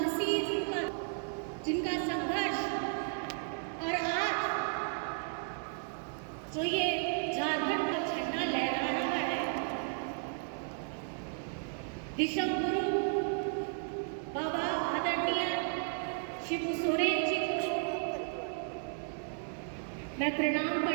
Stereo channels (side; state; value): left; silent; 55 dB below the other